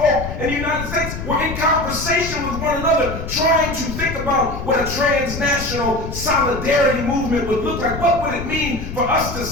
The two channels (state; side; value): noise; left; rumble, 8 dB below the sound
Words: in the United States were in conversation with one another, trying to think about what a transnational solidarity movement would look like. What would it mean for us to